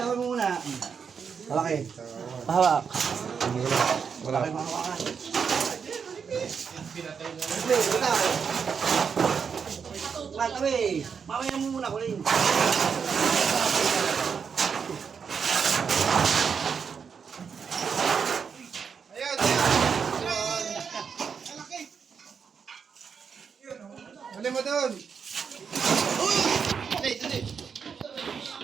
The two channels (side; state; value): left; quieter; 6.4 dB